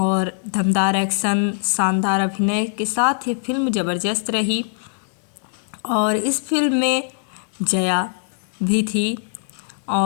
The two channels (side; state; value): right; silent; digital silence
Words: दमदार एक्शन, शानदार अभिनय के साथ ये फिल्म ज़बरदस्त रही। और इस फिल्म में जया भी थी